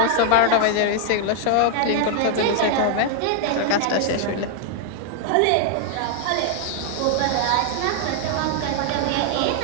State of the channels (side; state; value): both; different; correlation 0.00